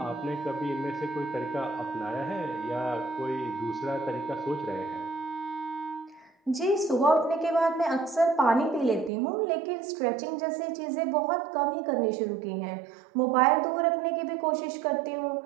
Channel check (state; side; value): drops out; left; at 9.1 s